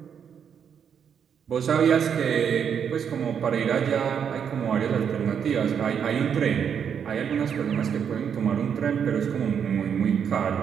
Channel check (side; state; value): left; quieter; 7.7 dB